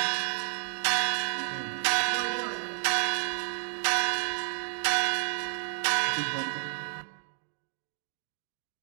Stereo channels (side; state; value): left; silent; digital silence